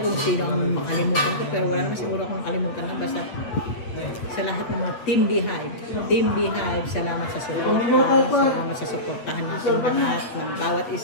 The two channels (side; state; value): right; late; 8.4 ms